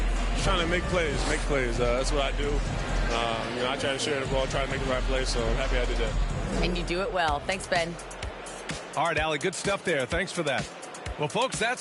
Trying to make plays. That's what I do. I try to share the ball, try to make the right play, so I'm happy I did that. And you do it well. Thanks, Ben. All right, Allie, good stuff there. Thanks for that. Well, folks,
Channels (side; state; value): both; identical; correlation 1.00